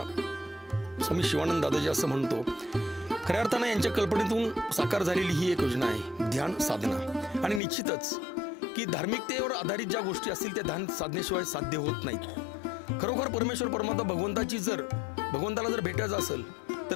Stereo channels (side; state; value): right; drops out; at 7.6 s